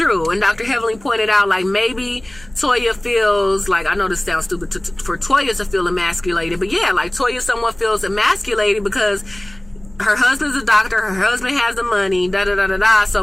And Dr. Heavenly pointed out, like, maybe Toya feels like, I know this sounds stupid for Toya to feel emasculated, but yeah, like Toya somewhat feels emasculated because her husband's a doctor, her husband has the money, da-da-da-da-da, so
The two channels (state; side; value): noise; left; hum, 24 dB below the sound